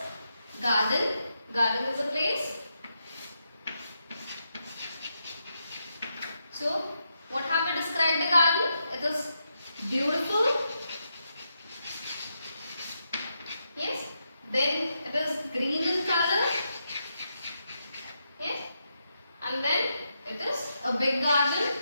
garden. Garden is a place. So, what have we described the garden? It is beautiful. Yes. Then it is green in color. Yes. And then it is a big garden.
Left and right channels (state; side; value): inverted; both; correlation -0.83